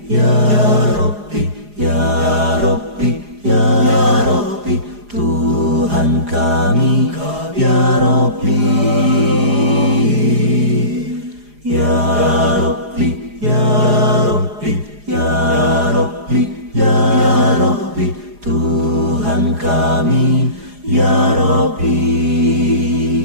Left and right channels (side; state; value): left; late; 4.9 ms